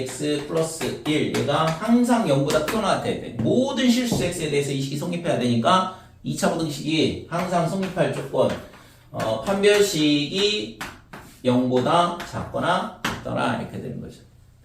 플러스 1 얘가 항상 0보다 크거나 같아야 돼. 모든 실수 x에 대해서 이 식이 성립해야 되니까 2차 부등식이 항상 성립할 조건 판별식이 0보다 작거나 같더라 이렇게 되는 거죠.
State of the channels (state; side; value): identical; both; correlation 1.00